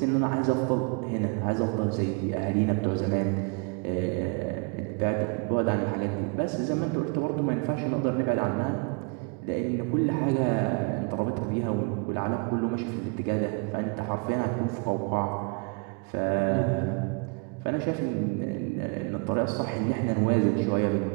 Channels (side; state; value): left; quieter; 34.4 dB